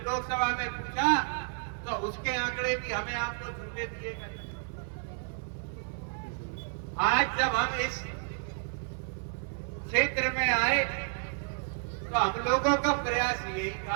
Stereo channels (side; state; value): left; silent; 57 dB below the other